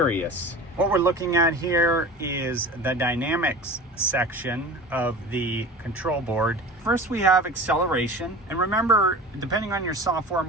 What we're looking at here is the dynamics section of the control board. First, we have acceleration. And remember, depending on your software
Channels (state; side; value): normal; both; correlation 0.36